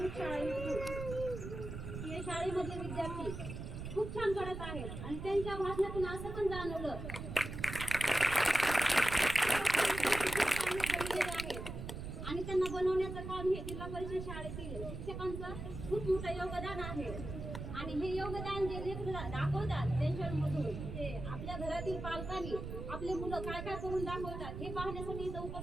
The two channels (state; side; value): noise; right; rumble, 7 dB below the sound